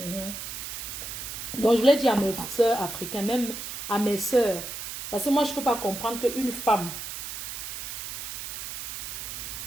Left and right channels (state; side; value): noise; right; hiss, 7 dB below the sound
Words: je voulais dire à mes soeurs africaines, même à mes soeurs, parce que moi, je ne peux pas comprendre qu'une femme,